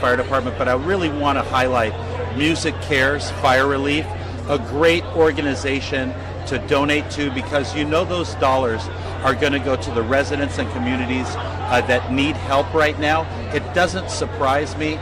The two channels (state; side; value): identical; both; correlation 1.00